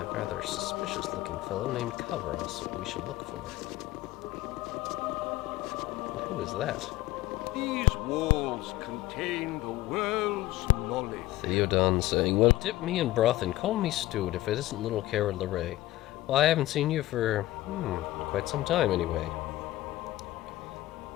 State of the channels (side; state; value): right; quieter; 16.5 dB